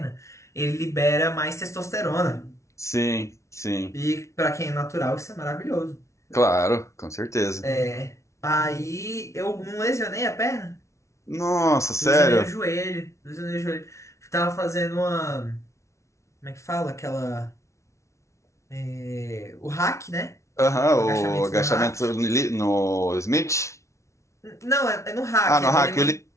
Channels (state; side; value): late; right; 0.14 ms